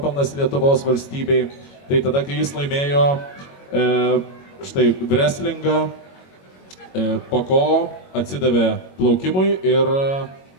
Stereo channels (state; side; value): late; right; 22 ms